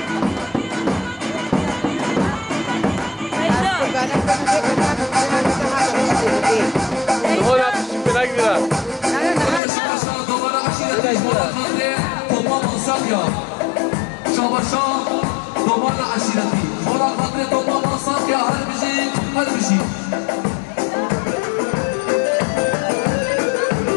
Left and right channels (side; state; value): right; drops out; at 9.6 s